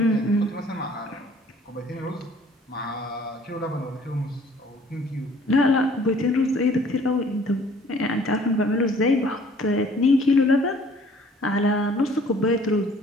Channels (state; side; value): normal; both; correlation 0.55